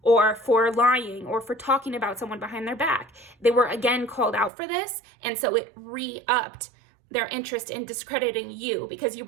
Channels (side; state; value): left; drops out; at 4.5 s